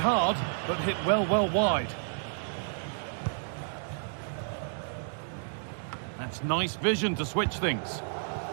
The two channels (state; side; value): silent; left; digital silence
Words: but hit well wide. That's nice vision to switch things.